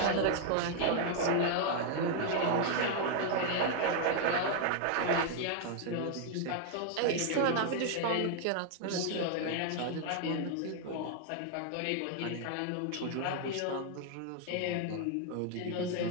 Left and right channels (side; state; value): both; different; correlation 0.00